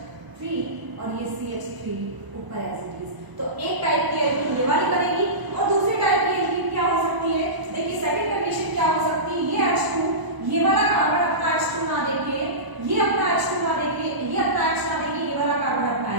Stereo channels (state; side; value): late; left; 1.0 ms